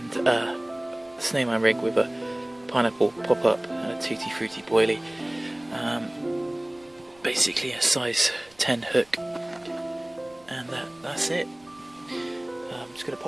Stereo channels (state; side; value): noise; right; rumble, 30 dB below the sound